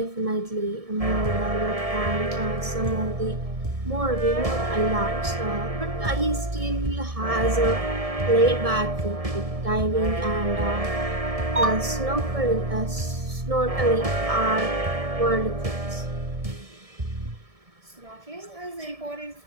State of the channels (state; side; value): late; left; 1.7 ms